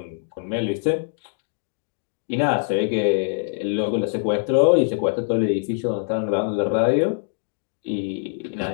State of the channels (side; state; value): right; silent; digital silence